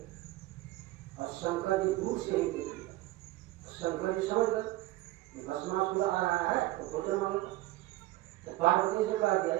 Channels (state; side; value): quieter; left; 17.7 dB